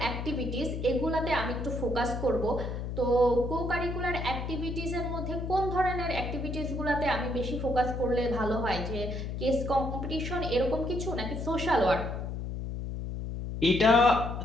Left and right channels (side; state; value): left; noise; hum, 5 dB below the sound